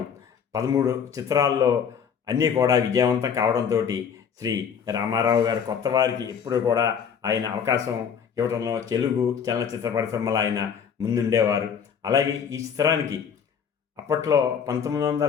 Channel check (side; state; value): right; quieter; 7.3 dB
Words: 13 చిత్రాల్లో అన్నీ కూడా విజయవంతం కావడంతో శ్రీ రామారావు గారు కొత్త వారికి ఎప్పుడు కూడా ఆయన అవకాశం ఇవ్వడంలో తెలుగు చలనచిత్ర పరిశ్రమలో ఆయన ముందుండేవారు. అలాగే ఈ చిత్రానికి అప్పట్లో